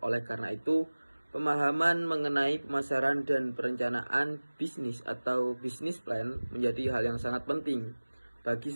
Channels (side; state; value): both; inverted; correlation -1.00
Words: Oleh karena itu, pemahaman mengenai pemasaran dan perencanaan bisnis atau business plan menjadi hal yang sangat penting bagi